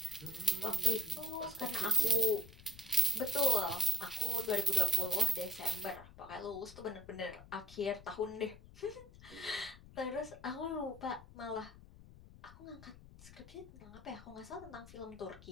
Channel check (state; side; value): noise; left; rumble, 19 dB below the sound